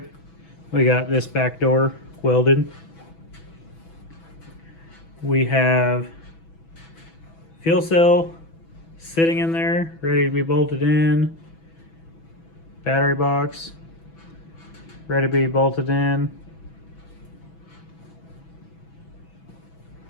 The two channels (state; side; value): late; right; 6.1 ms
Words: we got this back door welded. We have fuel cell sitting in there, ready to be bolted in. Battery box, ready to be bolted in.